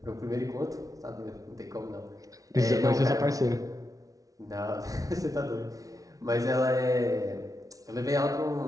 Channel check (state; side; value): late; left; 0.17 ms